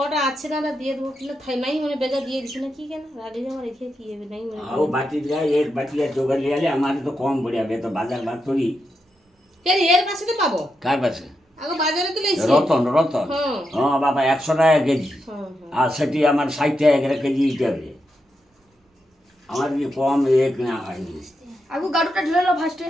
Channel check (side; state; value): both; normal; correlation 0.85